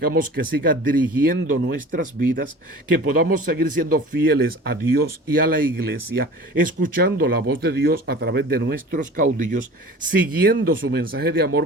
que siga dirigiendo nuestras vidas, que podamos seguir siendo fieles a Dios y a la iglesia, escuchando la voz de Dios a través de nuestros caudillos, siguiendo su mensaje de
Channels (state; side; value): normal; both; correlation 0.40